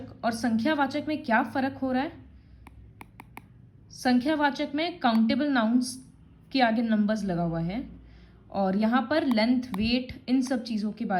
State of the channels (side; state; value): both; identical; correlation 1.00